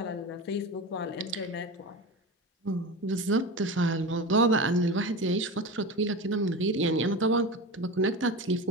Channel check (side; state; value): both; normal; correlation 0.26